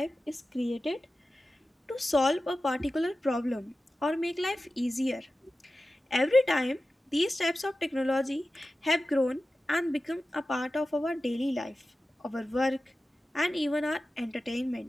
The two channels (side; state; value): both; normal; correlation 0.94